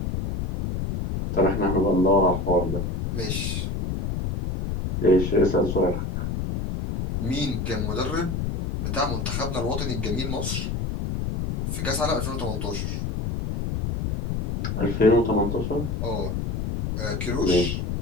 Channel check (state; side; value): noise; left; rumble, 2 dB below the sound